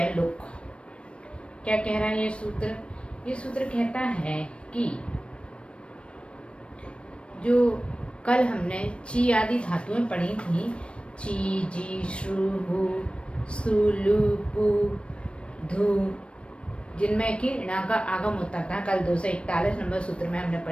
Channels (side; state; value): right; late; 0.059 ms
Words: लुक। क्या कह रहा है ये सूत्र? ये सूत्र कहता है कि जो कल हमने ची आदि धातुएं पढ़ी थी, ची, जी, श्रु, हु, सु, लु, पु, धु, जिनमें कि णा का आगम होता था, कल 241 नंबर सूत्र में हमने